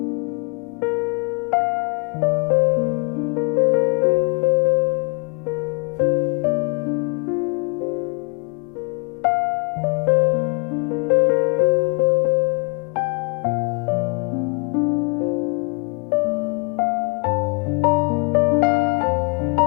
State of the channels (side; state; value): right; quieter; 36.1 dB